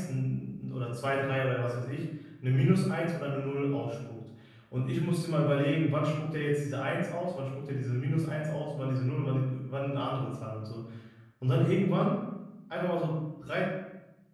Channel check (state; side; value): identical; both; correlation 1.00